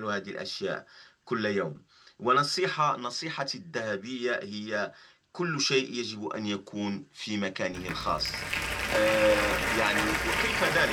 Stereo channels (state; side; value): identical; both; correlation 1.00